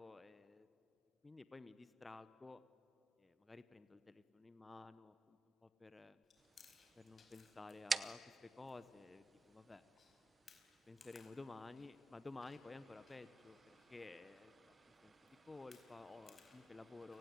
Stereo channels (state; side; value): normal; both; correlation 0.92